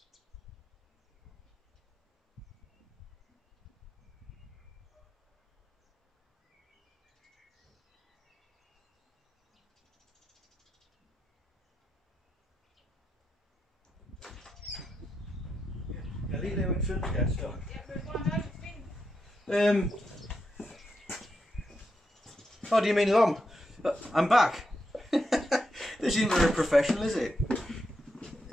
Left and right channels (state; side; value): normal; both; correlation 0.84